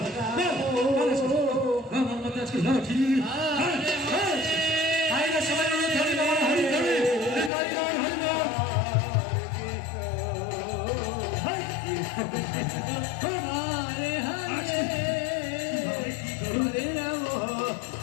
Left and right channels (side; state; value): right; drops out; at 7.5 s